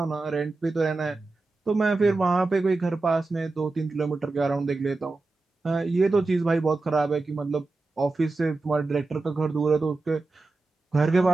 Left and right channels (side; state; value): left; quieter; 3.5 dB